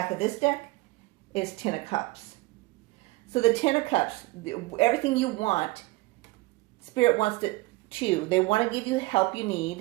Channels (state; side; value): quieter; left; 22.2 dB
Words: of this deck is 10 of Cups. So the 10 of Cups, everything you want, Spirit wants to too. They want to give you help you